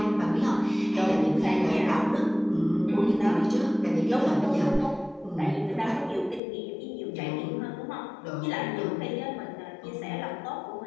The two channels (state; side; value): drops out; right; at 6.4 s